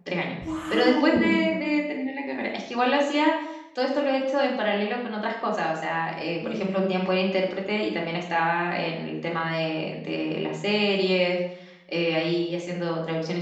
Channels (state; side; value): identical; both; correlation 1.00